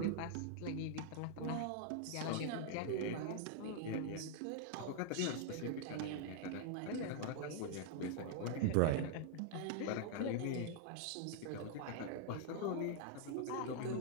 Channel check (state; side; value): different; both; correlation -0.01